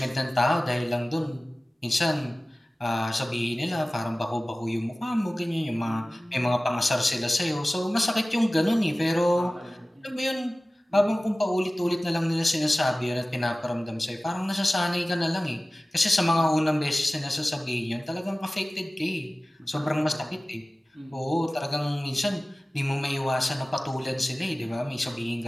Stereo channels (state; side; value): normal; both; correlation 0.97